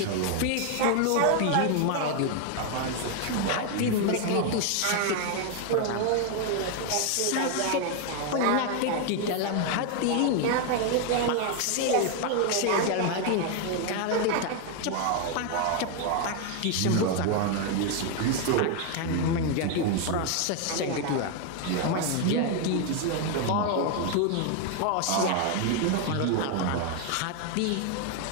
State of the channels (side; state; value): both; different; correlation 0.01